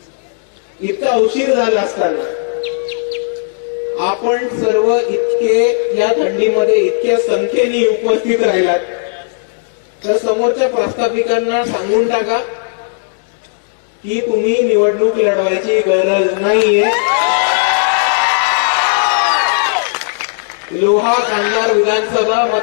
इतका उशीर झाला असताना आपण सर्व इतके या थंडीमध्ये इतक्या संख्येने उपस्थित राहिलात, तर समोरच्या प्रस्थापिकांना सांगून टाका की तुम्ही निवडणूक लढवायची गरज नाहीये। लोहा कांधार विधानसभा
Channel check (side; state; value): right; silent; digital silence